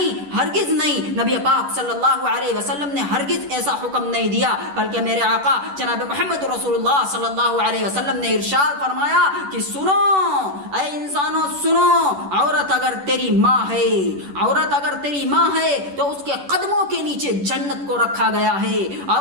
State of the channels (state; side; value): late; left; 10 ms